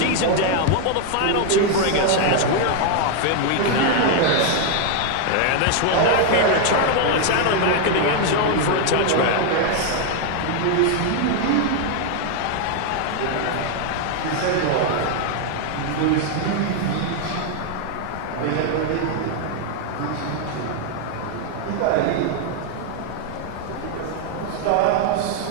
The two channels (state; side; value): different; both; correlation 0.00